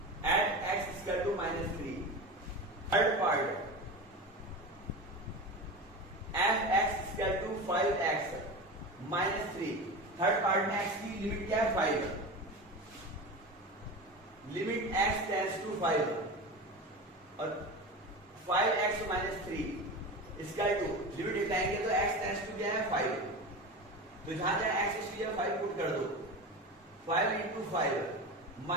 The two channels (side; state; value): both; normal; correlation 0.27